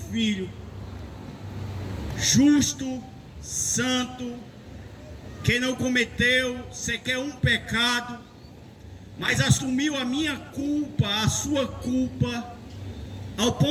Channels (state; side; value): identical; both; correlation 1.00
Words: justo, santo, que não cometeu sequer um pecado, mas assumiu a minha culpa, a sua culpa, ao